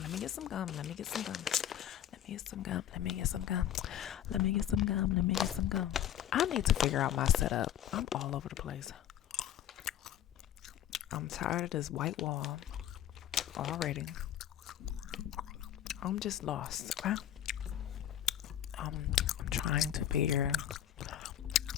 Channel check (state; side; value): quieter; right; 11.1 dB